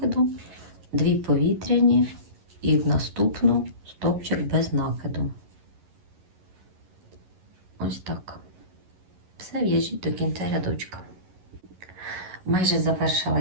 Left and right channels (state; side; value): late; left; 11 ms